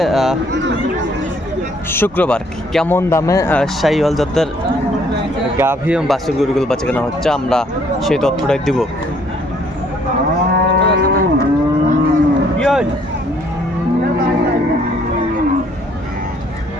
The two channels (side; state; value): both; normal; correlation 0.64